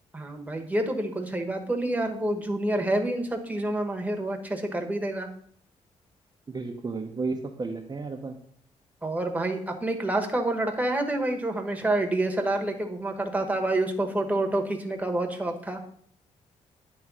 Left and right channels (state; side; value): normal; both; correlation 0.82